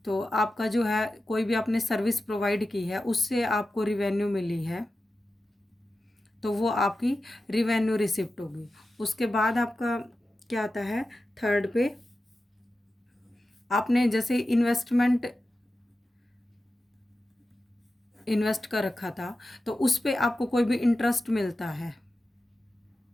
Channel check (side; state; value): both; normal; correlation 0.92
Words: तो आपका जो है कोई भी आपने सर्विस प्रोवाइड की है उससे आपको रिवेन्यू मिली है, तो वो आपकी रिवेन्यू रिसिप्ट होगी। उसके बाद आपका क्या आता है, थर्ड पे आपने जैसे इन्वेस्ट कर रखा था, तो उस पे आपको कोई भी इंटरेस्ट मिलता है।